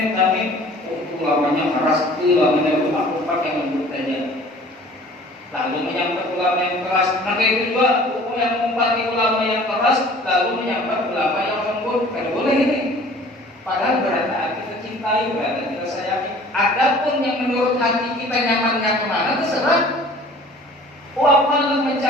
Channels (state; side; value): normal; both; correlation 0.49